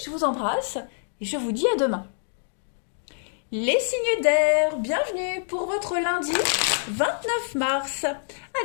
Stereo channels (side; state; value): right; silent; digital silence